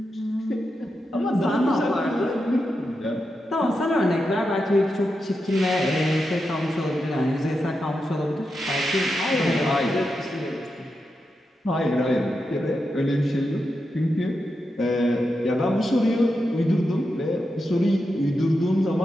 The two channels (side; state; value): both; normal; correlation 0.87